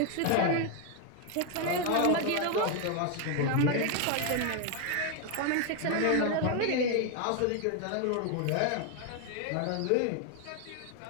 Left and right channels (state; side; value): different; both; correlation 0.01